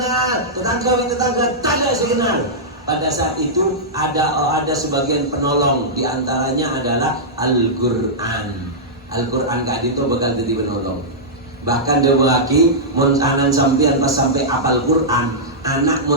tetangga tak ada sekenal. Pada saat itu ada sebagian penolong, diantaranya adalah Al-Quran. Al-Quran kak itu bakal jadi penolong. Bahkan dia lagi mun anan sampean pas sampai apal Quran, anak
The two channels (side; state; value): both; normal; correlation -0.11